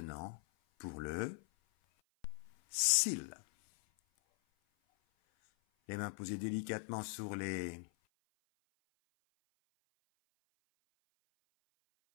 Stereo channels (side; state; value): right; silent; 51 dB below the other